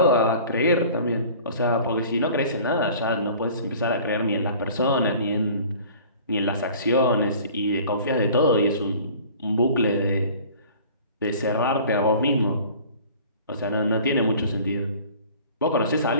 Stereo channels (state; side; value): inverted; both; correlation -0.46